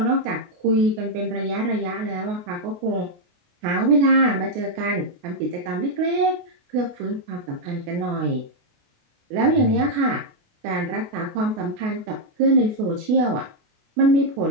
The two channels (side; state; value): left; late; 28 ms